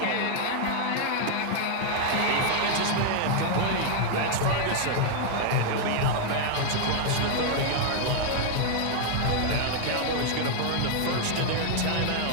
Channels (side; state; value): both; different; correlation 0.00